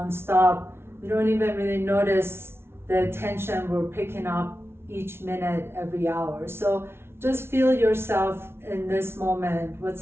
we don't even really notice the tension we're picking up each minute, every hour. So just feel yourself in this moment,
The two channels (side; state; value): left; late; 0.12 ms